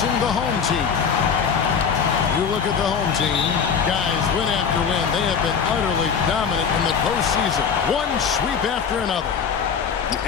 the home team. You look at the home team, guys, win after win, they have been utterly dominant in the postseason. One sweep after another.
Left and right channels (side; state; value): right; quieter; 6.6 dB